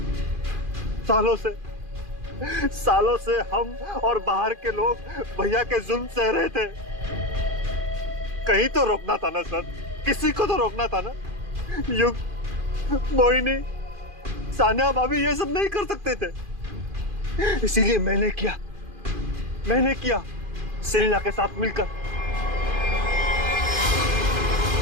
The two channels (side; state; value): left; late; 2.4 ms